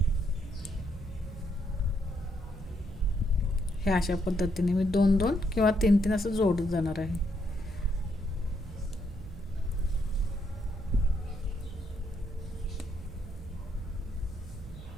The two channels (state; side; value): noise; right; hum, 13 dB below the sound